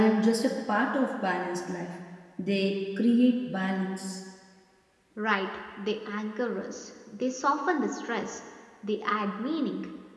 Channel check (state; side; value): identical; both; correlation 1.00